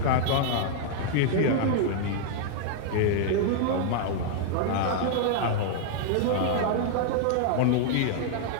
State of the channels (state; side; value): different; both; correlation -0.01